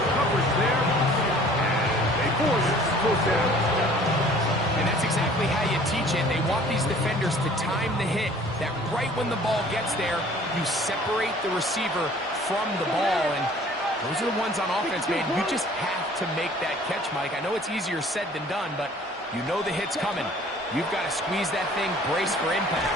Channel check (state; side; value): normal; both; correlation 0.52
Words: coverage there, and they force 4th down. And that's exactly how you teach it. They want these defenders to time the hit, that right when the ball gets there, you separate the receiver from the ball. And those are the ones on offense, man. You just have to make that catch, Mike. I know it's easier said than done, but you know the hit's coming. You've got to squeeze that thing, brace for